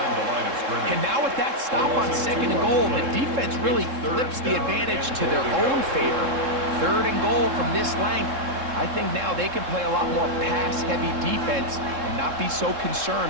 And now with that stop on 2nd and goal, the defense really flips the advantage to their own favor. 3rd and goal from this length. I think now they can play a lot more pass-heavy defense and not be so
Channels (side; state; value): left; late; 3.7 ms